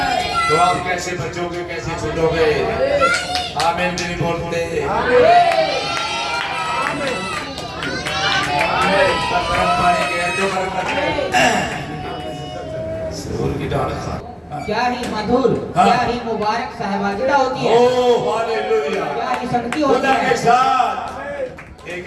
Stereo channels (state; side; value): identical; both; correlation 1.00